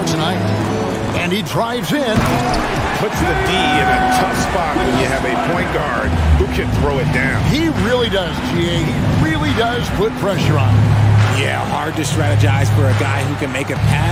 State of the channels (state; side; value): identical; both; correlation 1.00